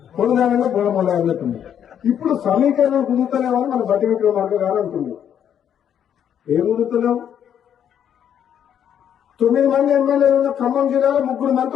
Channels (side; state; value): right; quieter; 9.2 dB